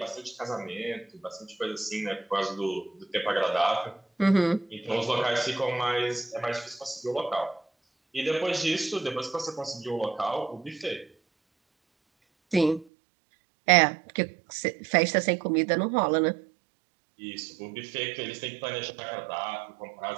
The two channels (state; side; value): drops out; left; at 12.9 s